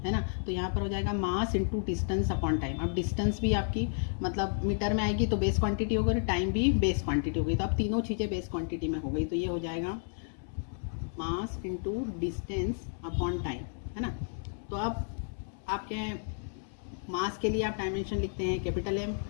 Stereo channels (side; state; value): right; silent; 57 dB below the other